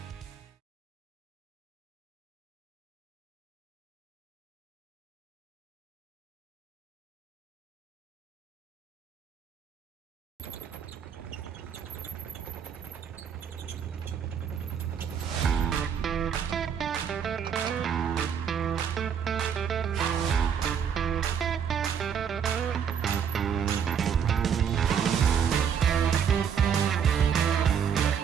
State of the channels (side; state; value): left; quieter; 7.7 dB